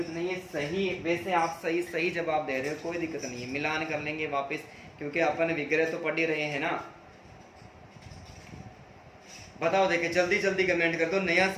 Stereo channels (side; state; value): both; identical; correlation 1.00